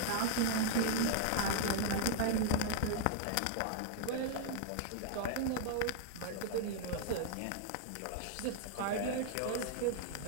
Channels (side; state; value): both; different; correlation 0.00